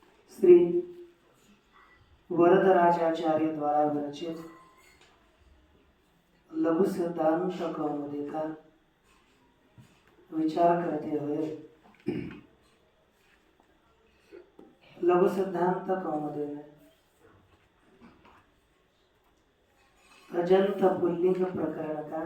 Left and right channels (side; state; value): both; identical; correlation 1.00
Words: श्री वरदराजाचार्य द्वारा विरचित लघु सिद्धांत कौमुदी का विचार करते हुए लघु सिद्धांत कौमुदी में अजंत पुल्लिंग प्रकरण का,